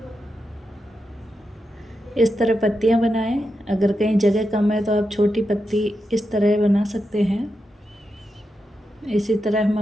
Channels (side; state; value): both; normal; correlation 0.87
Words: इस तरह पत्तियां बनाएं। अगर कहीं जगह कम है तो आप छोटी पत्ती इस तरह बना सकते हैं। इसी तरह हम